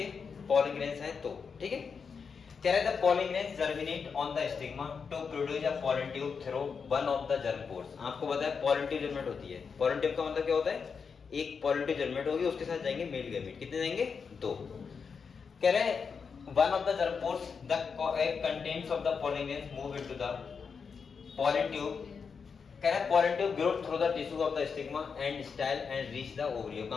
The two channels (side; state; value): right; quieter; 5.8 dB